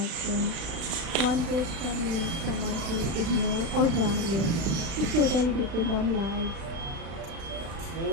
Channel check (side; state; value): left; late; 36 ms